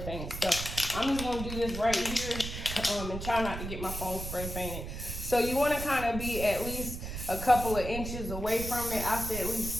paints. So I'm just gonna do this right here and try not to get my phone spray painted. So you want to kind of be at least a couple of inches away from it. I say at least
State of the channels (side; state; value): right; noise; rumble, 7 dB below the sound